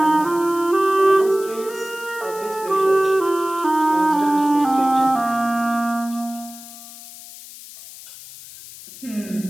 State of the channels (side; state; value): left; noise; hiss, 16 dB below the sound